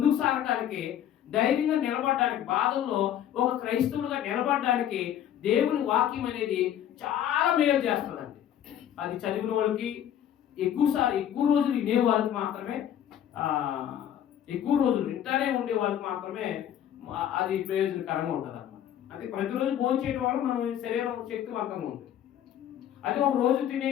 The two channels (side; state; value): right; quieter; 10.5 dB